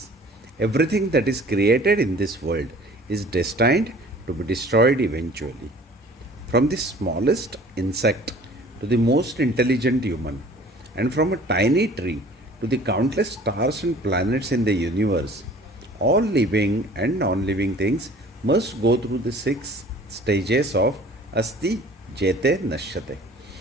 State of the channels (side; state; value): both; normal; correlation 0.49